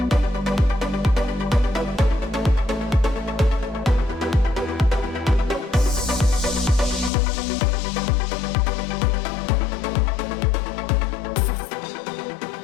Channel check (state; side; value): drops out; right; at 7.1 s